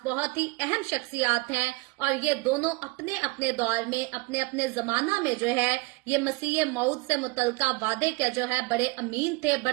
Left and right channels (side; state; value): left; quieter; 24.7 dB